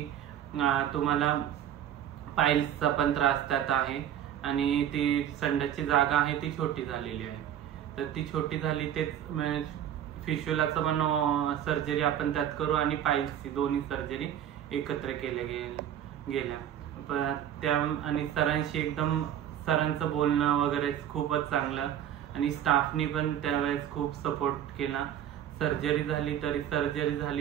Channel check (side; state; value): left; quieter; 10.4 dB